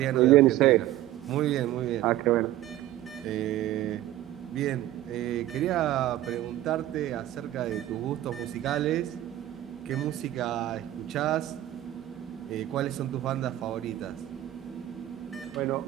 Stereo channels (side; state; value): left; quieter; 14.1 dB